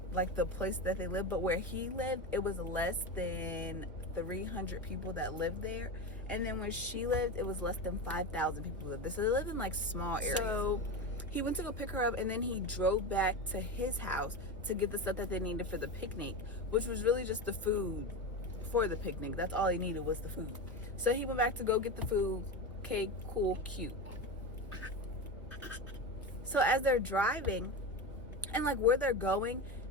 like the place that they lived, but where he lived, it was less than 300 people that lived there. And then where she lived, it was less than 5,000 people lived there. So they lived in like small areas. So he went to go pick her up, and then he drove back to his house to get the stuff that they needed for the picnic, which was really just the food for the picnic. That's all he needed was the food. So he went back to go get the food. Okay, cool, cute. So as they're driving, and like where they're going,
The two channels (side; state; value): both; normal; correlation 0.21